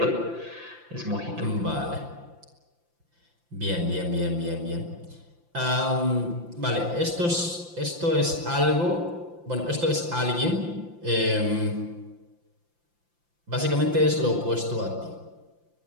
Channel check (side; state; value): left; late; 5.8 ms